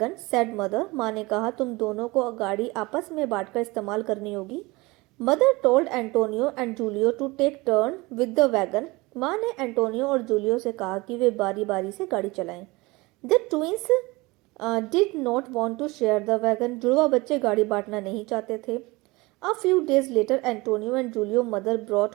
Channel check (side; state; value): left; quieter; 23.2 dB